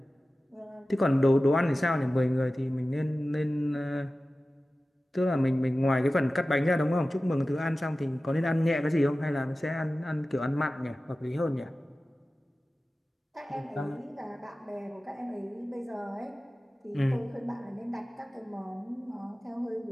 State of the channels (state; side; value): normal; both; correlation 0.96